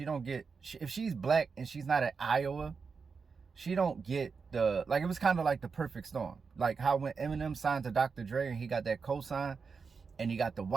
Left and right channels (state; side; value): quieter; left; 5.2 dB